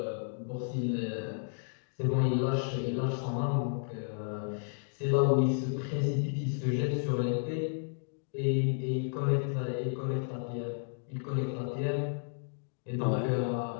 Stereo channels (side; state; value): right; silent; digital silence